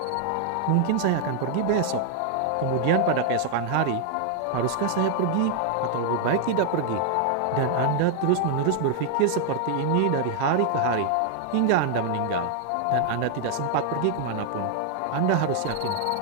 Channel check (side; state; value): both; different; correlation 0.00